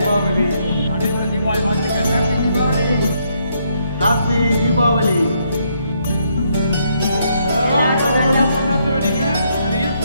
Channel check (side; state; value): both; inverted; correlation -0.74